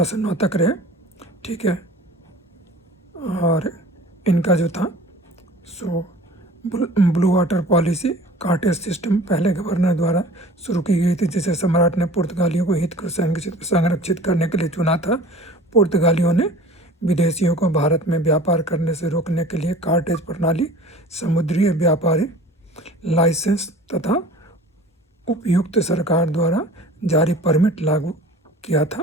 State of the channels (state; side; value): normal; both; correlation 0.44